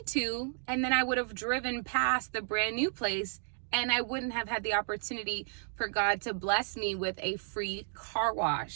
to. And then I would have driven past the brand new place and I wouldn't have had the opportunity for God to bless me with a free car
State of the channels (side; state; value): left; silent; 56 dB below the other